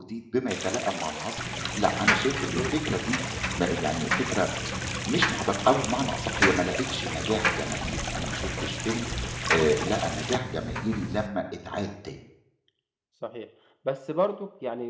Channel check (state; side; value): identical; both; correlation 1.00